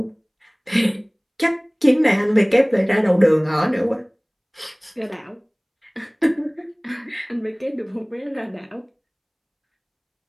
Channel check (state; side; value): identical; both; correlation 1.00